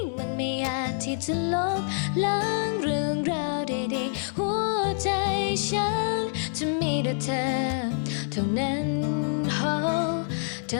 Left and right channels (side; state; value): right; silent; 60 dB below the other